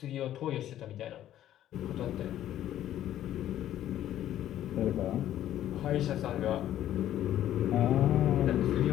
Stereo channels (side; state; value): right; quieter; 12.2 dB